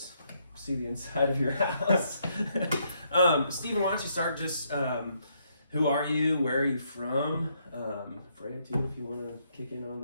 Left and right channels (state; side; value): inverted; both; correlation -0.73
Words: see the inside of your house. Stephen, why don't you start just... who are you? Where are you from? Freya, too, if you want to kick in on